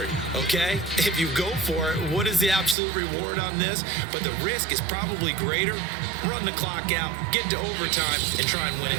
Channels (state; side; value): drops out; left; at 2.8 s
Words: okay? If you go for it, what is the absolute reward on this? But the risk is probably greater. Run the clock out, get to overtime, and try and win